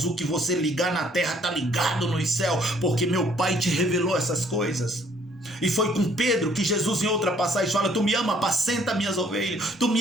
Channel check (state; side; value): normal; both; correlation 0.62